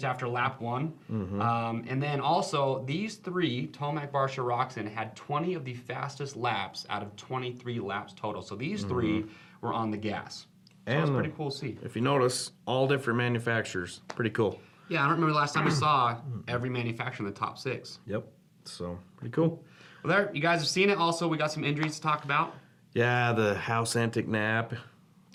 after lap 1. And then also these 3, Tomac, Barsha, Roxon, had 20 of the fastest laps out of 23 laps total. So these 3 were on the gas. So and it's pretty cool to see. If you notice, all different manufacturers. Pretty cool. Yeah, I don't remember the last time we saw every manufacturer in the top 6. Yep. So pretty cool. Well, there, you guys have seen it. Also, we got some injuries to talk about. Yeah, the House Antic Nap.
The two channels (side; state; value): both; identical; correlation 1.00